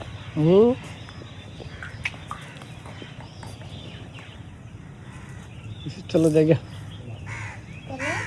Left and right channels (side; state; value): both; identical; correlation 1.00